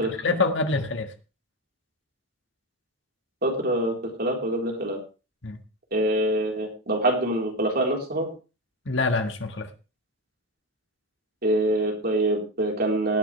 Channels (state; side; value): normal; both; correlation 0.13